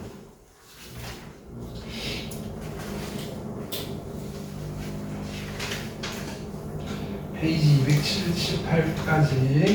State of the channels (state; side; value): identical; both; correlation 1.00